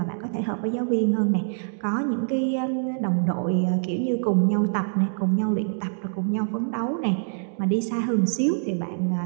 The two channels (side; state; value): left; silent; digital silence